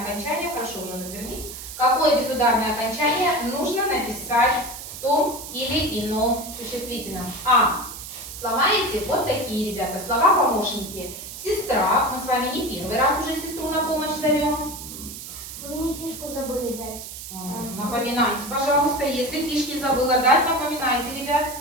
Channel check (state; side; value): noise; right; hiss, 11 dB below the sound